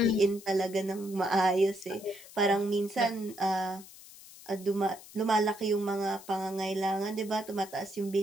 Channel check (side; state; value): left; noise; hiss, 19 dB below the sound